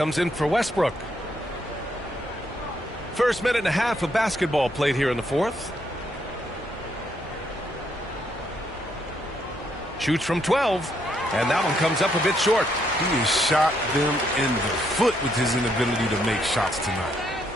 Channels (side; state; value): both; normal; correlation 0.74